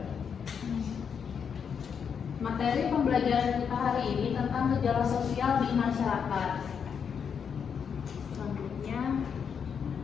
Materi pembelajaran kita hari ini tentang gejala sosial di masyarakat. Selanjutnya,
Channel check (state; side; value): quieter; right; 7.0 dB